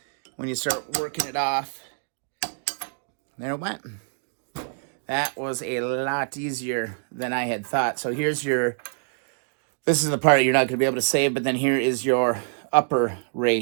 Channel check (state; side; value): silent; left; digital silence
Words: when you start working it off. There it went. That was a lot easier than I had thought. So here's your, this is the part you're not going to be able to save, but then here is your upper